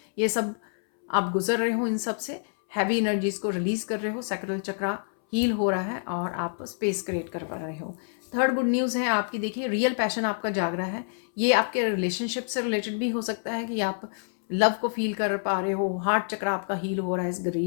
ये सब आप गुजर रहे हो। इन सब से हैवी एनर्जीज़ को रिलीज़ कर रहे हो, सैक्रल चक्र हील हो रहा है और आप स्पेस क्रिएट कर पा रहे हो। थर्ड गुड न्यूज़ है आपकी, देखिए रियल पैशन आपका जाग रहा है। ये आपके रिलेशनशिप से रिलेटेड भी हो सकता है कि आप लव को फील कर पा रहे हो, हार्ट चक्र आपका हील हो रहा है इस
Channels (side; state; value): right; silent; 60 dB below the other